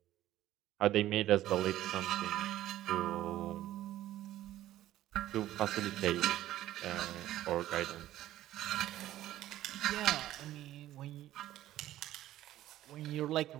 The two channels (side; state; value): left; quieter; 13.9 dB